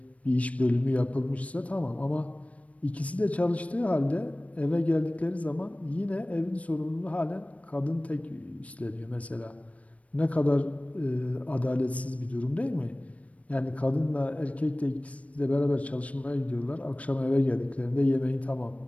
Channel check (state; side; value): late; right; 0.066 ms